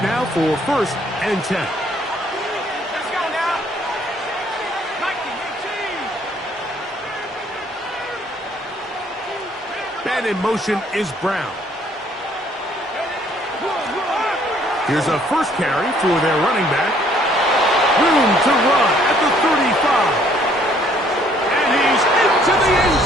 now for first and 10. Let's go now. Man in motion is Brown. Here's a first carry for their running back. Room to run at the 35. And he's into the end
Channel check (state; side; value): normal; both; correlation 0.63